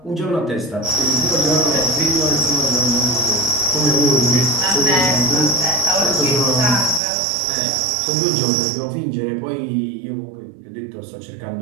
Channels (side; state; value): left; drops out; at 7.0 s